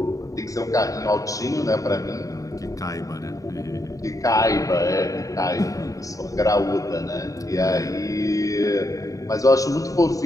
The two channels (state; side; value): late; right; 0.16 ms